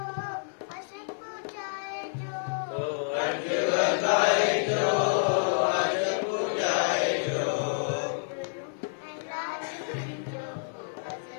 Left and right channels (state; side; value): silent; right; 59 dB below the other